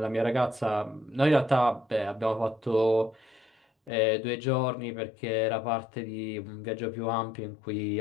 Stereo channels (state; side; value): drops out; right; at 3.9 s